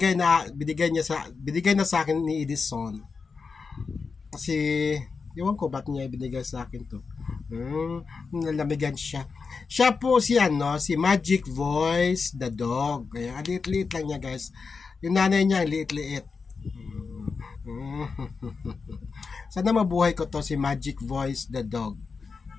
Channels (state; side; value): quieter; right; 4.9 dB